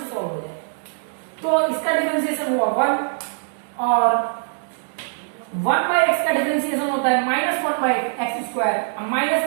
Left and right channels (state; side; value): silent; left; digital silence